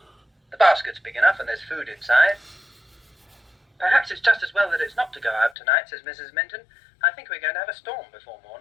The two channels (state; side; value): drops out; right; at 5.6 s